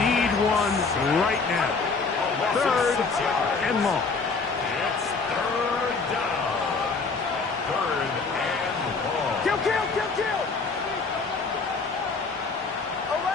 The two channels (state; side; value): quieter; right; 4.4 dB